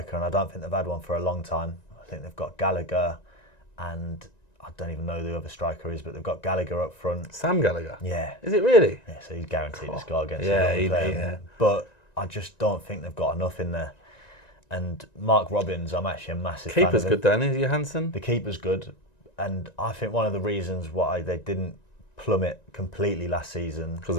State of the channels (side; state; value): right; late; 1.9 ms